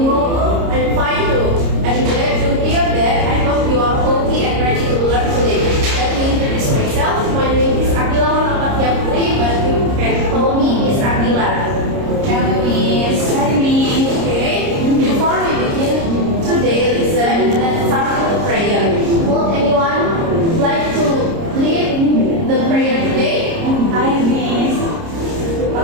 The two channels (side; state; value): left; late; 30 ms